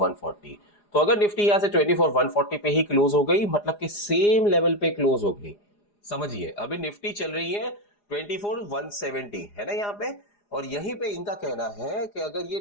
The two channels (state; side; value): late; right; 4.9 ms